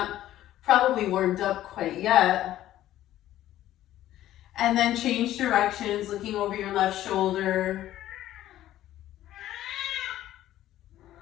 probably warmed up quite yet. And then change directions, looking over your left shoulder.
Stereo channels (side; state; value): right; quieter; 13.4 dB